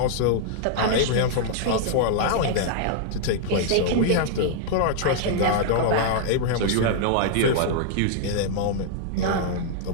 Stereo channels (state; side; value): different; both; correlation -0.01